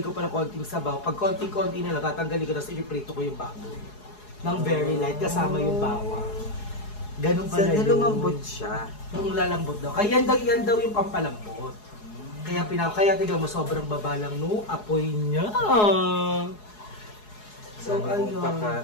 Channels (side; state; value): right; late; 4.8 ms